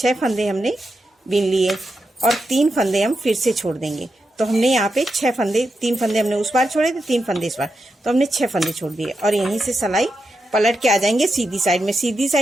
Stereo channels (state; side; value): normal; both; correlation 0.87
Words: फंदे हमने बीन लिए और 3 फंदे हम फिर से छोड़ देंगे। तो हमने यहाँ पे 6 फंदे, 3 फंदे हमने उस बार छोड़े थे, 3 फंदे इस बार, तो हमने 6 फंदे छोड़ दिए। और यहीं से सिलाई पलट के आ जाएंगे सीधी साइड में। सीधी